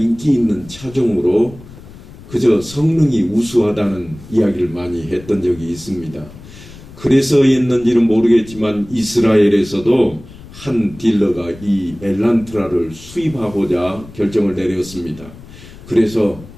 있는 차종으로 그저 성능이 우수하다는 이야기를 많이 했던 적이 있습니다. 그래서였는지는 모르겠지만 이스라엘에서도 한 딜러가 이 엘란트라를 수입하고자 결정을 내렸습니다. 그래서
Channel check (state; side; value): noise; left; rumble, 18 dB below the sound